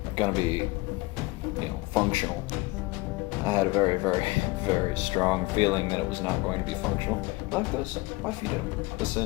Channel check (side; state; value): right; quieter; 23.1 dB